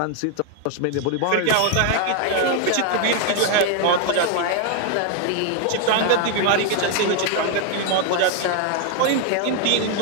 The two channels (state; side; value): different; both; correlation 0.00